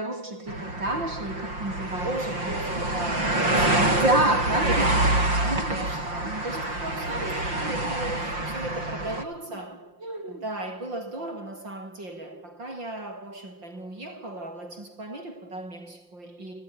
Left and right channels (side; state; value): left; late; 5.7 ms